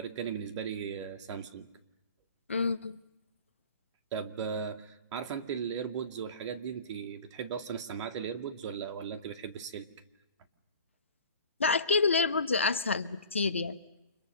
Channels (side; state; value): both; inverted; correlation -0.41